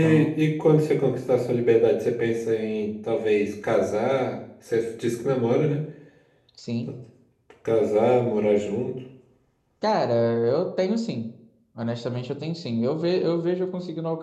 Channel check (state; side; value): identical; both; correlation 1.00